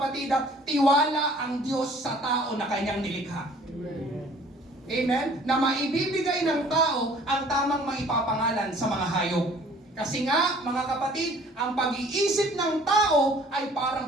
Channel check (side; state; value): both; normal; correlation 0.53